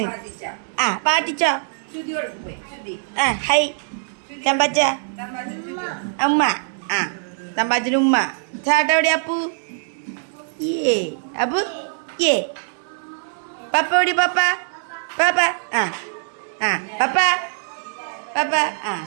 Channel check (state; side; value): silent; left; digital silence